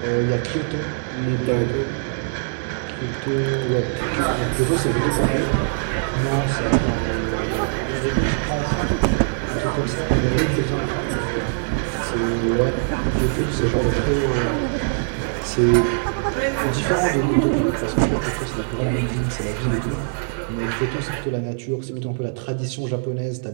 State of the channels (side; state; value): left; silent; digital silence